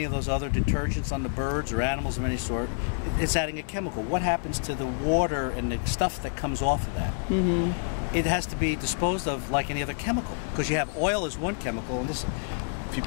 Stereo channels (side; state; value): right; silent; 59 dB below the other